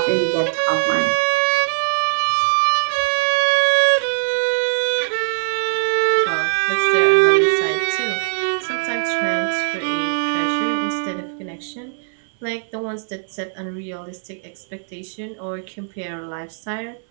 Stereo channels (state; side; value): silent; left; 58 dB below the other